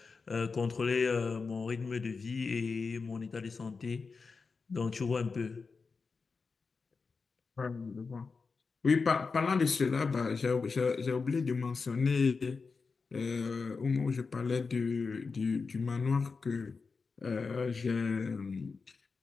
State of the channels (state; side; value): quieter; right; 4.7 dB